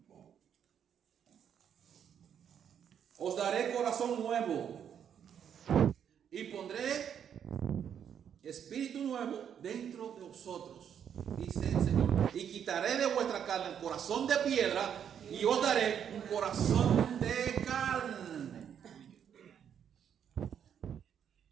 os daré corazón nuevo y pondré espíritu nuevo dentro de vosotros. dice el Señor, y quitaré de vuestra carne el corazón de piedra y os daré un corazón de carne.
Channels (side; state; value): left; quieter; 8.6 dB